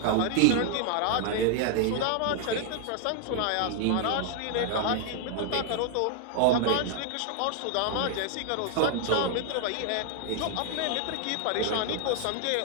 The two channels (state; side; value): different; both; correlation 0.00